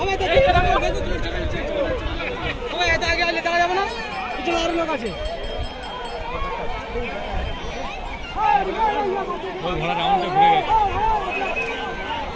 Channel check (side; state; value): both; identical; correlation 1.00